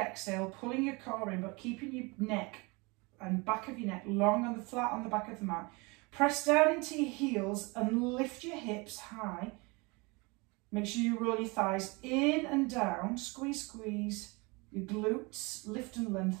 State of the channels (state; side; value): quieter; left; 27.2 dB